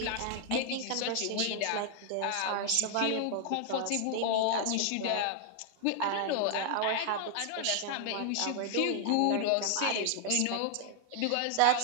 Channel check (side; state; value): both; different; correlation 0.00